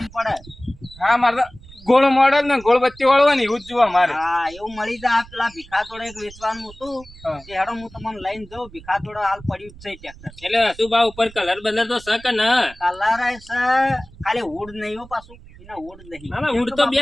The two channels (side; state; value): right; noise; rumble, 20 dB below the sound